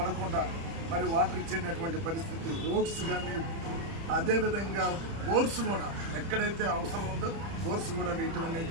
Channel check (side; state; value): left; late; 30 ms